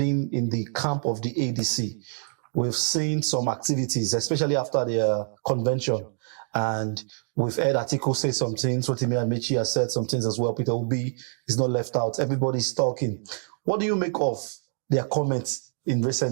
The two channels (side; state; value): left; silent; digital silence